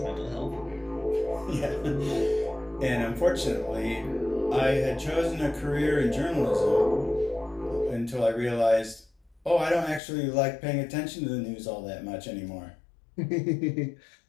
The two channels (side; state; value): right; drops out; at 10.0 s